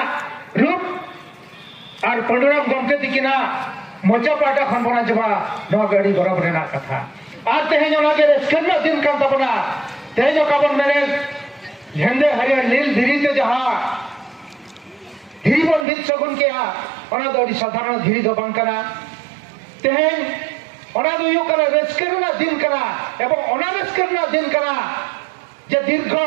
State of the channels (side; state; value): left; drops out; at 15.9 s